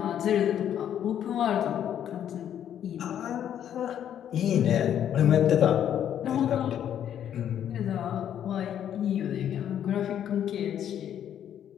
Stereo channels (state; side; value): quieter; right; 9.9 dB